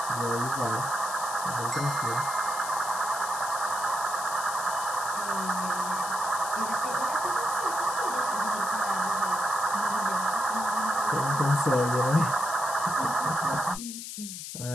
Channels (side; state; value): left; noise; hiss, 8 dB below the sound